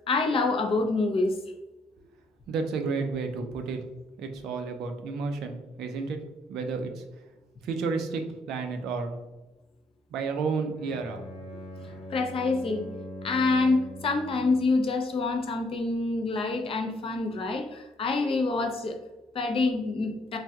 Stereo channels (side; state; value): both; normal; correlation 0.69